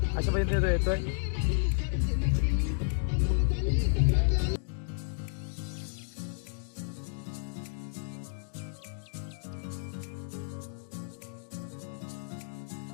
अशा पद्धतीने येतोय.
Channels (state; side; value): silent; right; digital silence